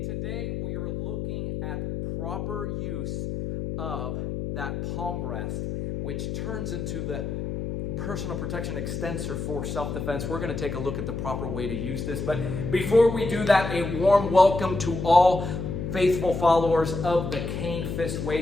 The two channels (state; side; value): noise; left; hum, 4 dB below the sound